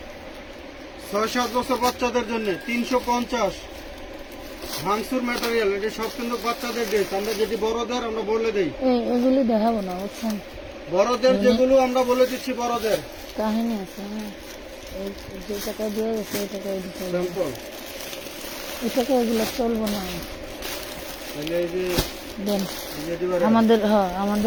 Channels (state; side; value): identical; both; correlation 1.00